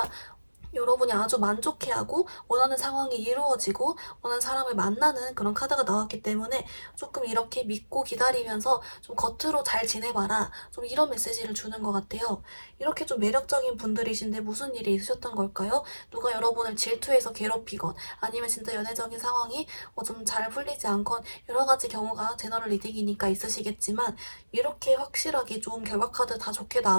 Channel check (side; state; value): both; inverted; correlation -1.00